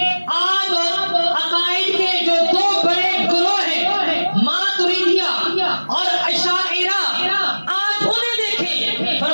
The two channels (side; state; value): both; inverted; correlation -1.00